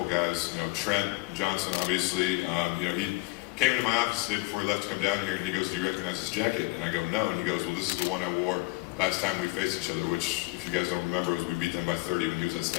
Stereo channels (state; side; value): quieter; right; 24.8 dB